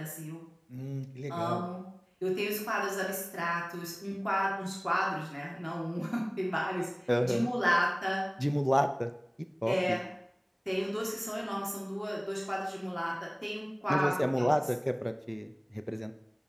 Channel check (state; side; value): identical; both; correlation 1.00